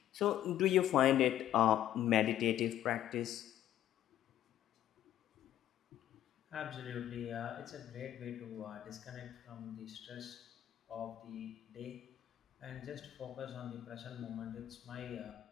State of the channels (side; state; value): right; quieter; 12.0 dB